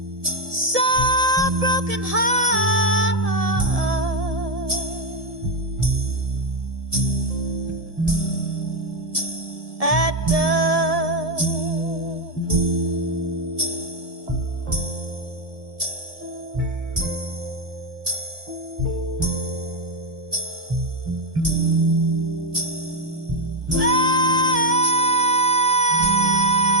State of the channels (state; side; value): late; left; 1.7 ms